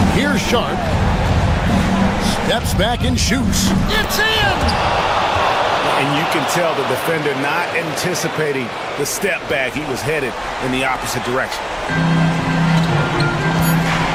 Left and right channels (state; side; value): identical; both; correlation 1.00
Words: Here's Sharp. Steps back and shoots. It's in! And you can tell the defender not anticipating the step back. He was headed in the opposite direction.